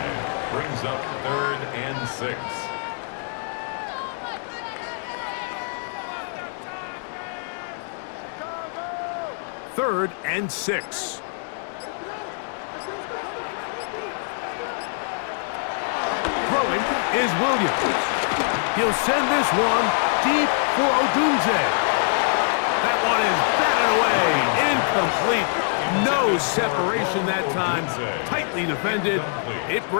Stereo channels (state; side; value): silent; right; digital silence